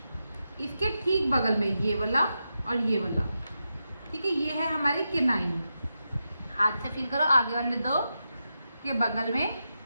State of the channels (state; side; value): inverted; both; correlation -0.88